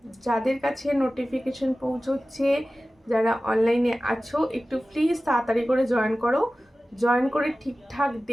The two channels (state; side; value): normal; both; correlation 0.96